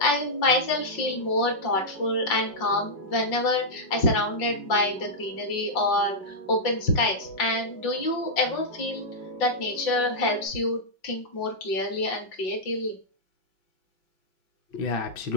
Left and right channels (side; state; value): right; late; 5.4 ms